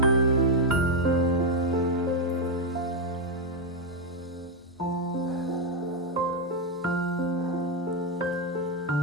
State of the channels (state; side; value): normal; both; correlation 0.03